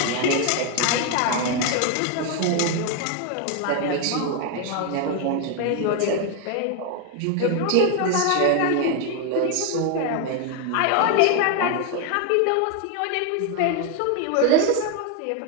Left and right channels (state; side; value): different; both; correlation 0.01